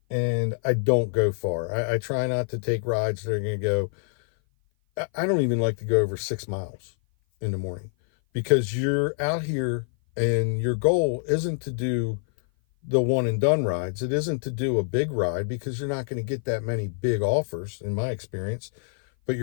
and I don't go far. I try not to take rides that are going to go, I don't even like to go over 6 miles in the morning, because you're out here and your goal isn't to do the one and done rides. It isn't to do a big ride, because you're not going to get that many big offers in my experience. But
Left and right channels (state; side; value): silent; right; 57 dB below the other